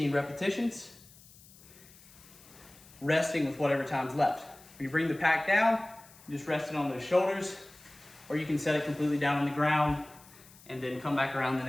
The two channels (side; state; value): left; noise; hiss, 23 dB below the sound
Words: repetitions, resting with whatever time's left. When you bring the pack down, you just rest it on those shoulders, or you can set it completely down on the ground and then come back around the